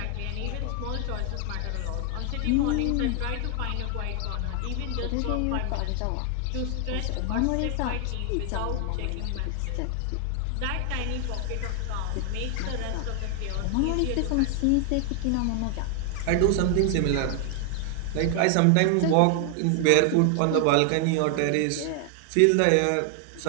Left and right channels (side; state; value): both; different; correlation 0.00